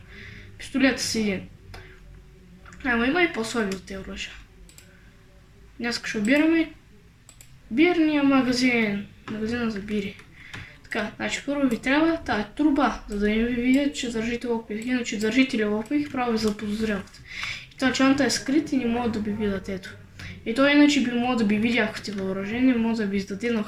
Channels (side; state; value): both; identical; correlation 1.00